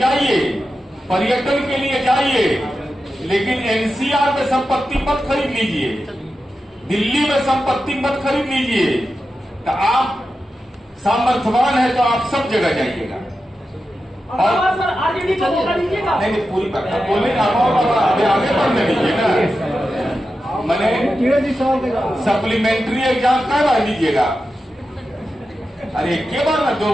पर्यटन के लिए जाइए, लेकिन एनसीआर में संपत्ति मत खरीद लीजिए, दिल्ली में संपत्ति मत खरीद लीजिए। तो आप सामर्थ्यवान है तो आप सब जगह जाइएगा। और सर आरजेडी को मौका दीजिएगा। नहीं पूरी बात बोले आगे बढ़ने दीजिए ना। मैंने सप्लीमेंट्री एग्जाम कब आ दीजिएगा? अरे के बार ना 2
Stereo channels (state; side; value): normal; both; correlation 0.91